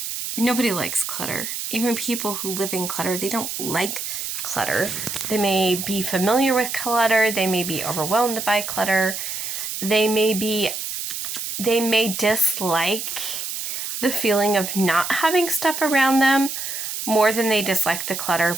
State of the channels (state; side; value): noise; right; hiss, 5 dB below the sound